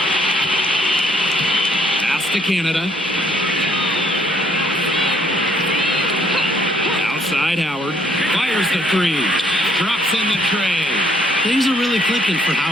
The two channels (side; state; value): both; normal; correlation 0.66